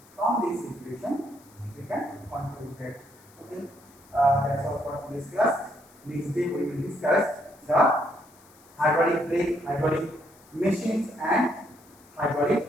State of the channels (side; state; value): left; noise; hiss, 27 dB below the sound